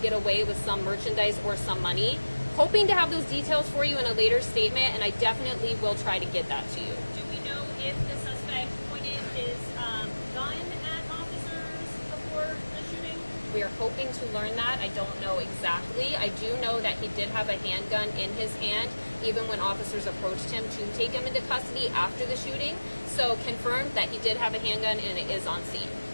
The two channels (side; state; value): both; inverted; correlation -1.00